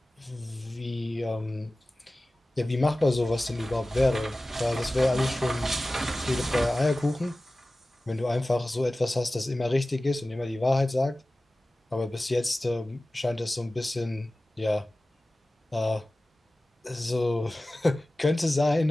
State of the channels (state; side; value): normal; both; correlation 0.97